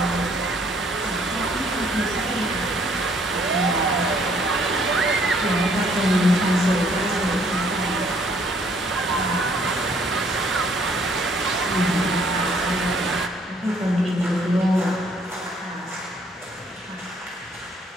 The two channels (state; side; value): normal; both; correlation 0.63